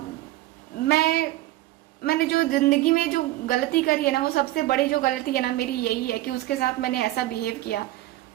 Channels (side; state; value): left; quieter; 16.5 dB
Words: मैंने जो जिंदगी में जो गलती करी है ना, वो सबसे बड़ी जो गलती है ना मेरी यही है कि उसके साथ मैंने ऐसा बिहेव किया,